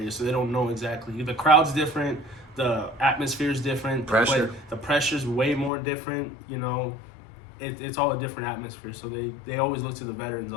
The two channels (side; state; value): right; drops out; at 5.7 s